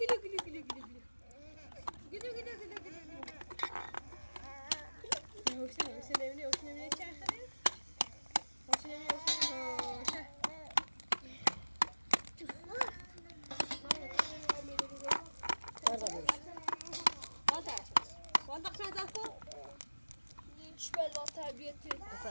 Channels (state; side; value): inverted; both; correlation -1.00